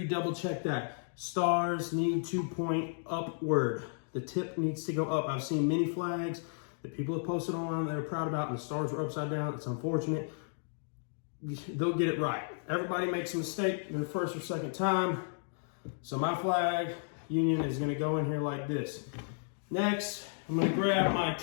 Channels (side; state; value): right; silent; digital silence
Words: double check that. Stars need to point upward. The tip needs to go up. I've seen many flags that people have posted online that they're proud about, and the stars were upside down. It's unfortunate. They'll get it right. Everybody makes a mistake their first or second time. So my flag union is gonna go in here like this. Next, I'm gonna grab my